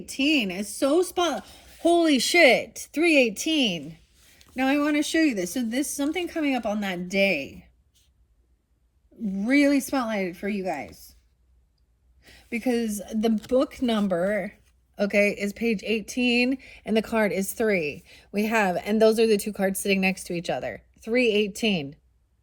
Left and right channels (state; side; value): identical; both; correlation 1.00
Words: is so spot. Holy shit, 318. Now, I want to show you this. So, this something coming up on that day. Really spotlighted for you guys. Because the book number, okay, is page 18 and the card is 3. We have, and those are the two cards sitting next to each other. 318.